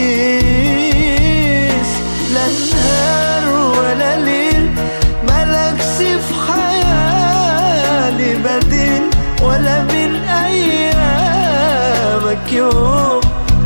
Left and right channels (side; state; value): both; inverted; correlation -1.00